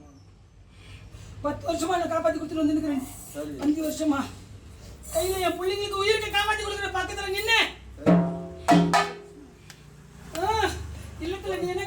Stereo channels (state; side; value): identical; both; correlation 1.00